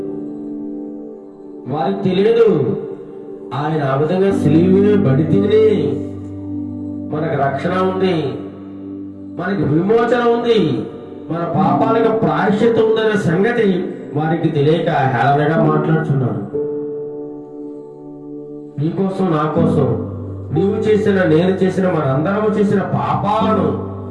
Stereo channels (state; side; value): identical; both; correlation 1.00